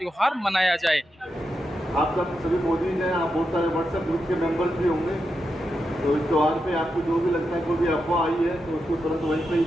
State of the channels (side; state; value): both; normal; correlation 0.87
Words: मनाया जाए। आप सब सभी मोदी हैं, आप बहुत सारे WhatsApp ग्रुप के मेंबर्स भी होंगे, तो इस त्यौहार पे आपको जो भी लगता है कोई भी अफवाह आई है तो उसको तुरंत वहीं पे ही